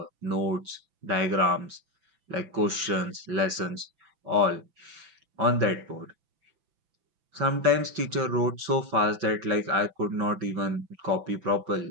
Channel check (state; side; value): late; left; 6.0 ms